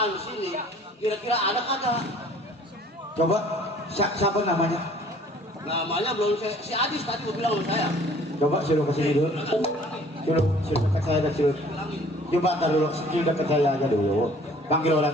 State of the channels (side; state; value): both; normal; correlation 0.54